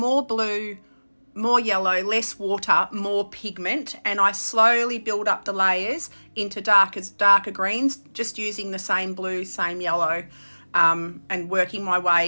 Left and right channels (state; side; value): inverted; both; correlation -1.00